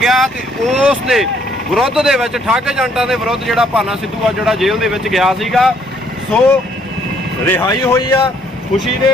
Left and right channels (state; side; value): normal; both; correlation 0.66